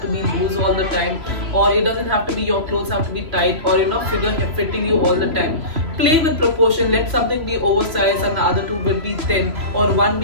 to be loose all the time, or it doesn't have to be your clothes have to be tight, or figure fitting you all the time. Play with proportion. Let something be oversized and the other two will be thin, or one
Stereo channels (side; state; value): left; late; 3.0 ms